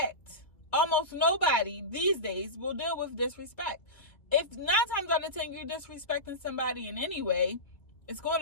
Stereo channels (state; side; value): late; right; 2.1 ms